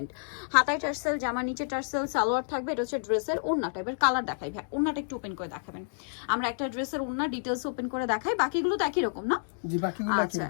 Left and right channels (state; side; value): silent; right; digital silence